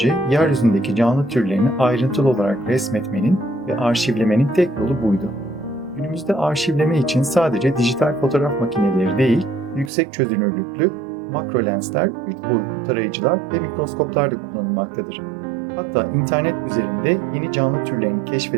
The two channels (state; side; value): drops out; left; at 9.9 s